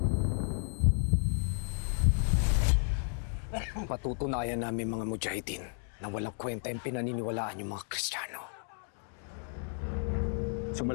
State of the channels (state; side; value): silent; right; 56 dB below the other